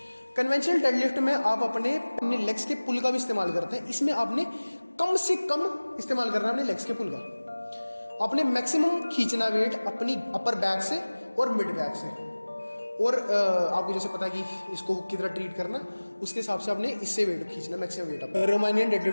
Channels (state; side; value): inverted; both; correlation -1.00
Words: कन्वेंशनल डेडलिफ्ट में आप अपने लेग्स के पुल का भी इस्तेमाल करते हैं, इसमें आपने कम से कम इस्तेमाल करना है अपने लेग्स के पुल का। आपने मैक्सिमम खींचना वेट अपनी अपर बैक से और मिड बैक से, और आपको जैसे पता है कि इसको किस तरह ट्रीट करना, उसके हिसाब से आपने इससे वेट खींचना, मैक्सिमम वेट अपना। रोमानियन